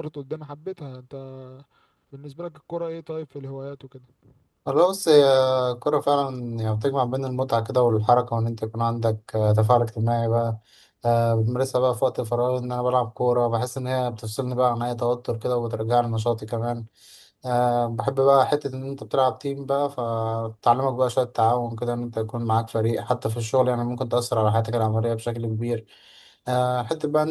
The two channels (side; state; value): both; identical; correlation 1.00